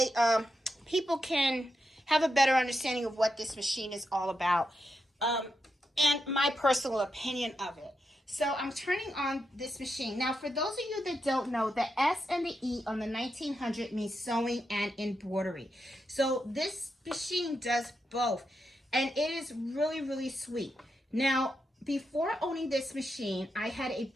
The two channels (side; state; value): both; normal; correlation 0.85